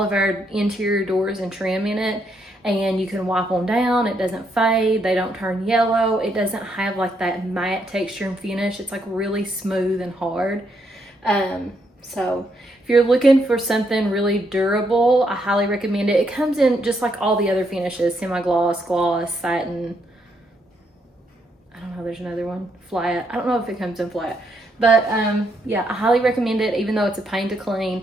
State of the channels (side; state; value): both; normal; correlation 0.76